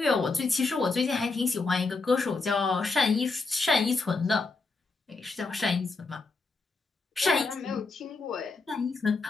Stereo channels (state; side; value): quieter; right; 3.9 dB